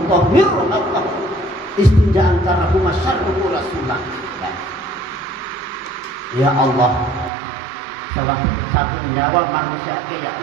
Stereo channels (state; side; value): drops out; left; at 7.3 s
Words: Allah istinja'an karahu masyarruhu rasulullah. Ya Allah, salah cabut nyawa manusia ke ya